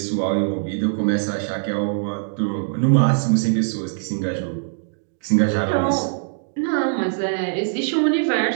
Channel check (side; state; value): left; silent; digital silence